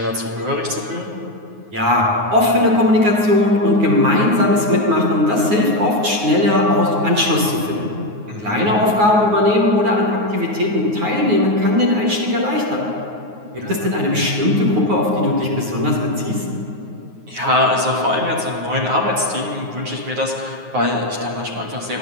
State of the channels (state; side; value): late; left; 9.5 ms